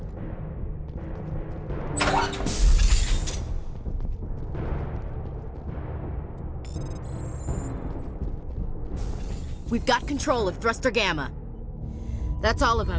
We've got control of Thruster Gamma. That's all of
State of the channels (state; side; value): identical; both; correlation 1.00